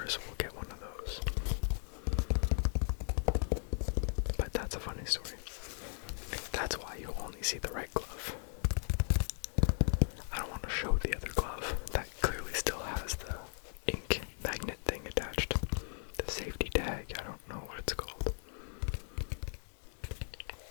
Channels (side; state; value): right; silent; 53 dB below the other